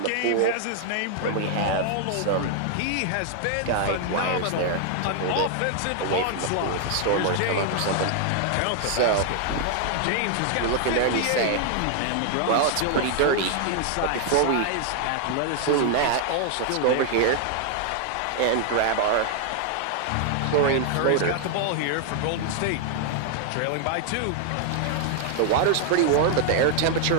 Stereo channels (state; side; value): different; both; correlation 0.00